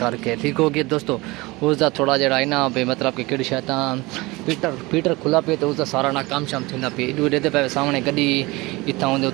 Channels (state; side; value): quieter; left; 22.6 dB